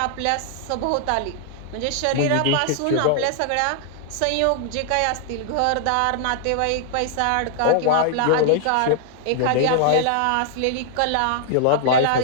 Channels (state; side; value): different; both; correlation -0.01